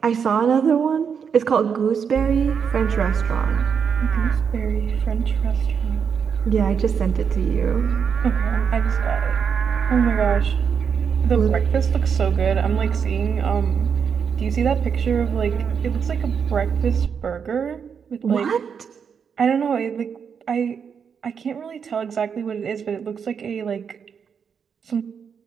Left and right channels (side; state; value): left; quieter; 6.8 dB